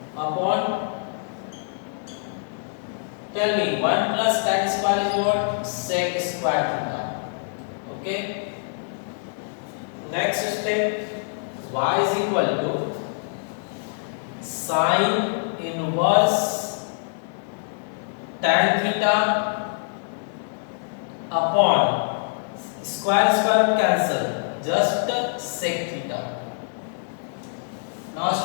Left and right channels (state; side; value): silent; right; digital silence